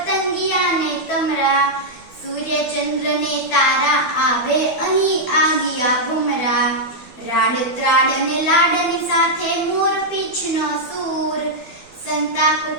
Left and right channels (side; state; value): right; late; 12 ms